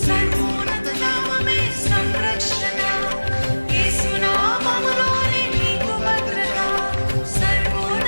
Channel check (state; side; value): inverted; both; correlation -1.00